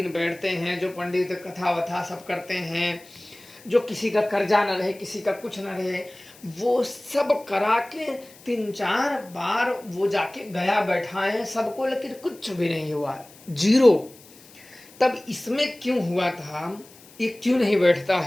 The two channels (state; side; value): noise; left; hiss, 23 dB below the sound